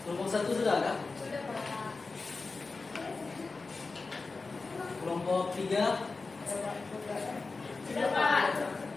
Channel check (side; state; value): right; quieter; 4.0 dB